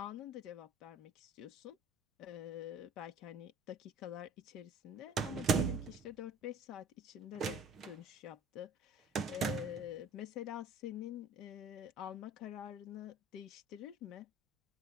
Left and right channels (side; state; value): both; normal; correlation 0.48